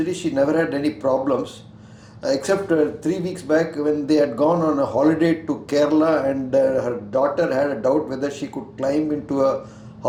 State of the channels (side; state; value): both; identical; correlation 1.00